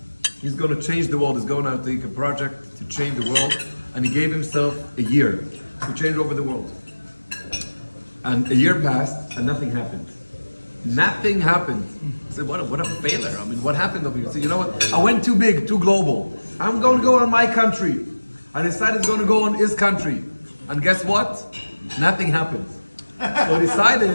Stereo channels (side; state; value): both; inverted; correlation -1.00